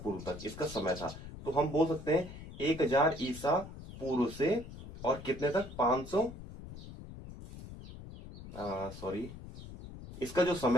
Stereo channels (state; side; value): noise; left; rumble, 13 dB below the sound